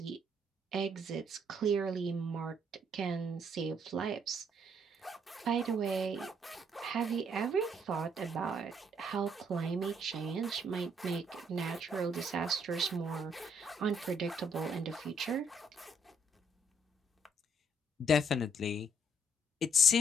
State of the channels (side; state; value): both; normal; correlation 0.69